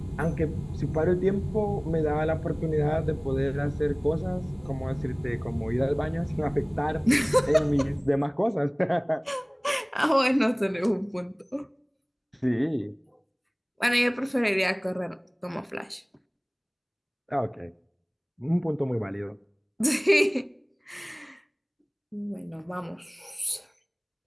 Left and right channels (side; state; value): both; identical; correlation 1.00